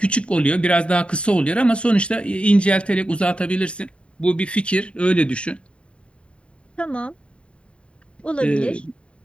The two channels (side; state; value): right; late; 0.058 ms